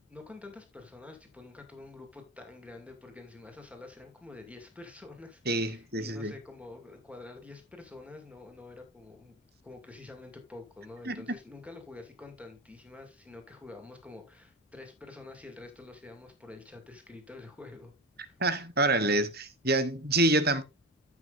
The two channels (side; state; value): both; normal; correlation 0.25